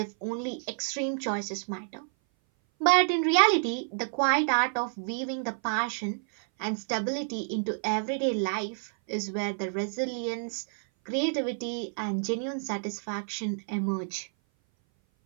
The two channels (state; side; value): silent; left; 57 dB below the other